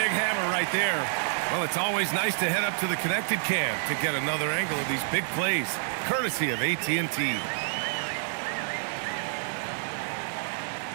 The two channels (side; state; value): left; silent; digital silence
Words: hammer right there. Well, it's always nice to head up to the connected cam to get another angle of these big plays, courtesy of AT&T.